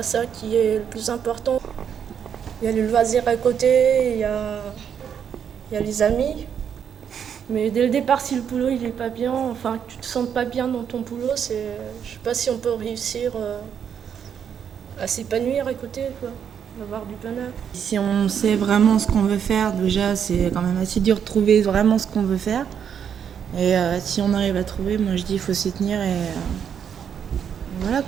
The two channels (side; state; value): left; quieter; 8.0 dB